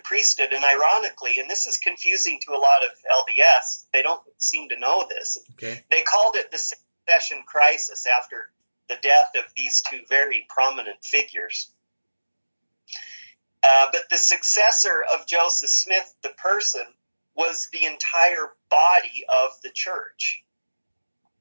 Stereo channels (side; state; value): both; inverted; correlation -1.00